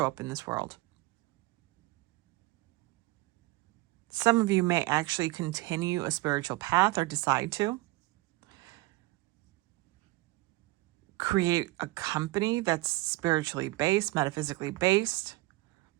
up in this world. Some of you may actually continue a spiritual path or decide to create a company that's spiritually based, metaphysically based,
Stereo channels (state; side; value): quieter; left; 20.8 dB